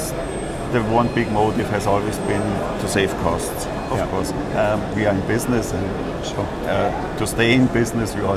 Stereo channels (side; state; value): both; identical; correlation 1.00